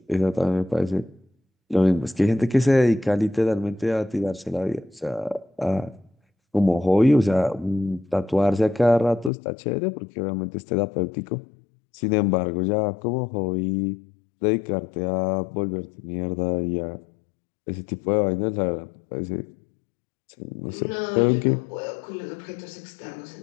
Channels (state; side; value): drops out; right; at 9.3 s